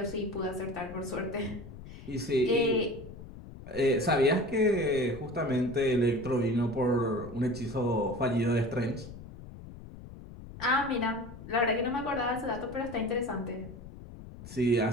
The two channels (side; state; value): left; noise; rumble, 15 dB below the sound